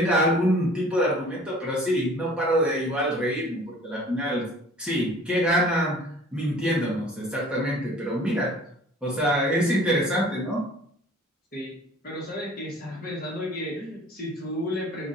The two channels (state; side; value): normal; both; correlation 0.49